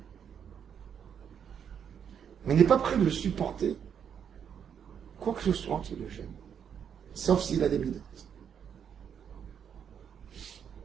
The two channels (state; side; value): quieter; left; 8.0 dB